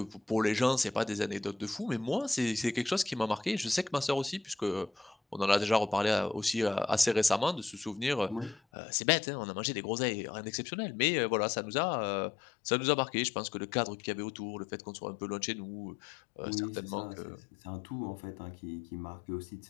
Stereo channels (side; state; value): right; drops out; at 8.6 s